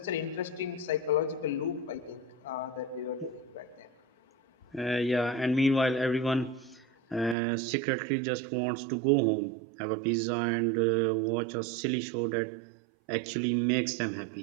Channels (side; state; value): left; drops out; at 7.4 s